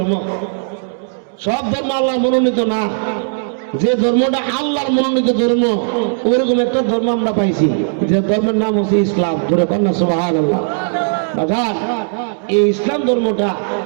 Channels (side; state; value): left; silent; digital silence